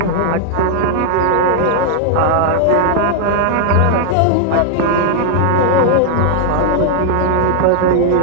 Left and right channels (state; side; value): different; both; correlation 0.00